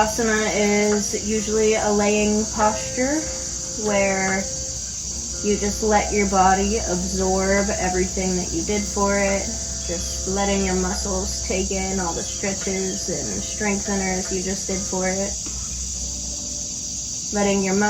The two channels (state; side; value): identical; both; correlation 1.00